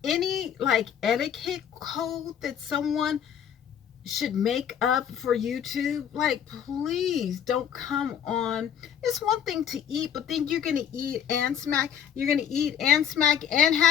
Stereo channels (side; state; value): right; quieter; 8.9 dB